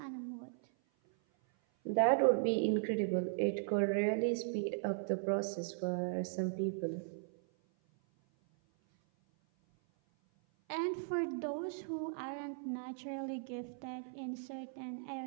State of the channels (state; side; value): silent; left; 53 dB below the other